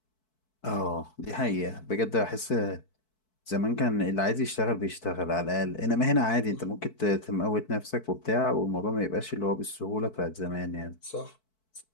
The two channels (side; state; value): right; late; 4.6 ms